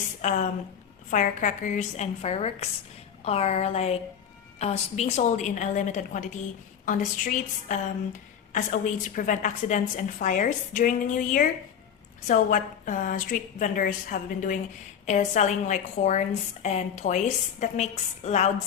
firecrackers and fireworks are like being sold in a limited quantity on the streets as a way to prevent accidents and fires during the new year. So what street vendors have been doing is selling like horns and toys that makes loud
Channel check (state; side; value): quieter; right; 8.2 dB